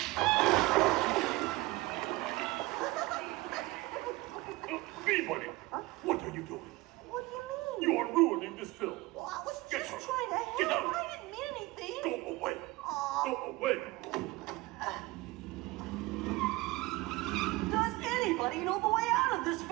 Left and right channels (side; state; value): left; quieter; 21.0 dB